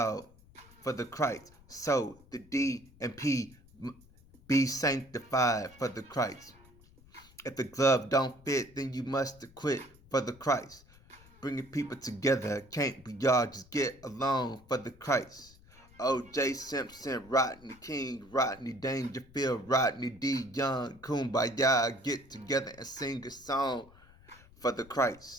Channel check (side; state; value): left; noise; rumble, 25 dB below the sound